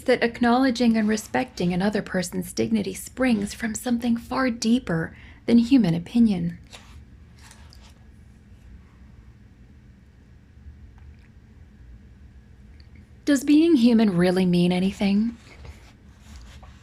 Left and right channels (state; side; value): identical; both; correlation 1.00